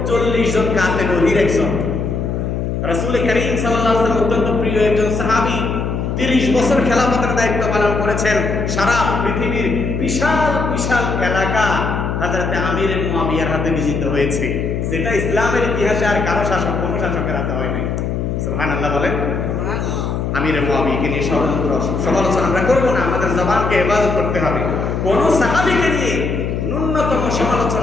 40 জন কাতে নদীর একজন, রাসূল করিম সাল্লাল্লাহু আলাইহি ওয়াসাল্লাম অত্যন্ত প্রিয় একজন সাহাবী, 30 বছর খেলাফতের দায়িত্ব পালন করেছেন। সারা পৃথিবীর বিশাল বিশাল এলাকা হযরতে আমির মুআবিয়ার হাতে বিজিত হয়েছে, যেটা ইসলামের ইতিহাসে আর কারো শাসক, কোনো শাসকের হাতে হয় নাই। সুবহানাল্লাহ বলেন। আমির মুআবিয়াকে নিয়ে ষড়যন্ত্র সমালোচনা আমরা করবো না, আমাদের জবানকে হেফাজত করতে হবে। কোন সাহাবীকে নিয়ে ন্যূনতম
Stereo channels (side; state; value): left; noise; hum, 2 dB below the sound